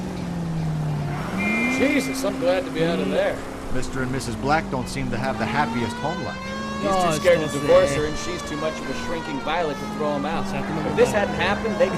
Jesus, I'm glad to be out of there. Mr. and Mrs. Black don't seem to have the happiest home life. He's too scared to divorce her, and she's too much of a shrinking violet to throw him out. If this hadn't happened, they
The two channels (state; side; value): identical; both; correlation 1.00